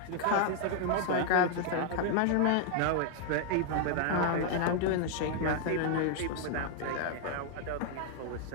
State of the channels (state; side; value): different; both; correlation 0.00